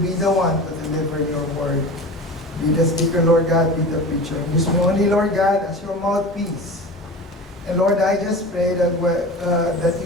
be the one to deliver your word. Be the speaker, Lord God, be the preacher. And use me only, Lord God, as your mouthpiece. And Lord, I just pray that that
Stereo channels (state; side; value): normal; both; correlation 0.33